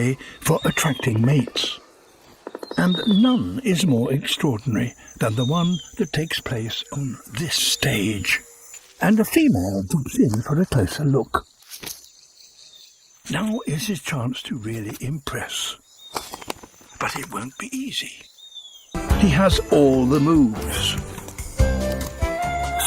for attracting mates. And none is more extraordinary than the one that takes place on this stage. And a female jumps in for a closer look. Now is his chance to really impress. But it won't be easy. He has all the moves.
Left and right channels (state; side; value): identical; both; correlation 1.00